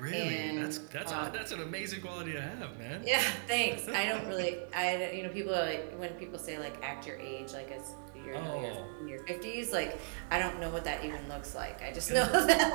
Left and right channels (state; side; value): silent; left; digital silence